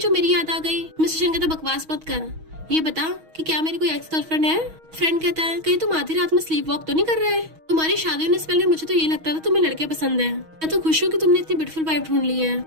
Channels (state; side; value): late; left; 6.3 ms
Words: मेरी याद आ गई? मिस्टर शन कहता बकवास मत कर, ये बता कि क्या मेरी कोई एक्स गर्लफ्रेंड है? फ्रेंड कहता है कहीं तुम आधी रात में स्लीप वॉक तो नहीं कर रहे? तुम्हारी शादी होने से पहले मुझे तो ये लगता था तुम्हें लड़के पसंद है। मैं तो खुश हूँ कि तुमने इतनी ब्यूटीफुल वाइफ ढूंढ ली है।